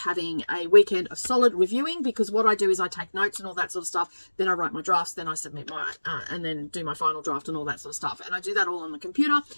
a weekend of solid reviewing, because what I do is I take notes and all that sort of stuff, then I write my drafts, then I submit my and then do my final draft and all that sort of stuff, and I do that all on the computer.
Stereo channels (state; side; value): inverted; both; correlation -1.00